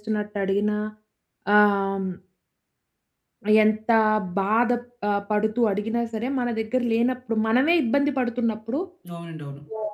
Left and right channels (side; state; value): both; identical; correlation 1.00